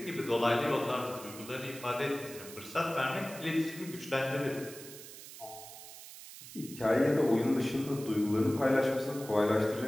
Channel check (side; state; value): right; noise; hiss, 14 dB below the sound